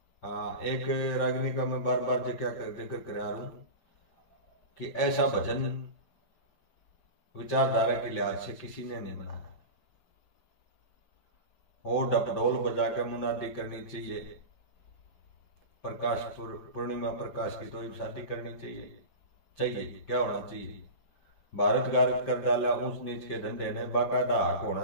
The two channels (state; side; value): late; right; 5.7 ms